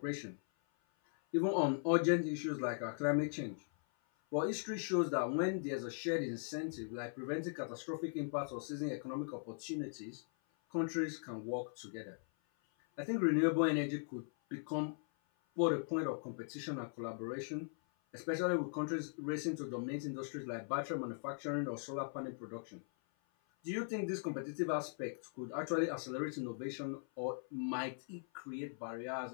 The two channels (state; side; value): silent; right; 51 dB below the other